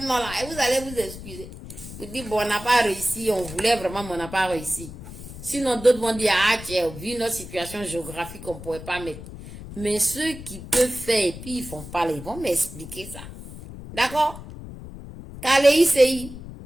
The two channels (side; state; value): left; noise; rumble, 13 dB below the sound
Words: nom là, vous allez vous excuser. Vous dites, bon, on n'a pas réussi, on voulait vraiment, mais on n'a pas réussi. Sinon, d'autres vont dire, ah, tiens, vu notre situation géographique, on ne pourrait pas mettre. Mais ceux qui peuvent faire, et puis ils font pas, ils vont m'expliquer ça. D'accord? Kalei CI.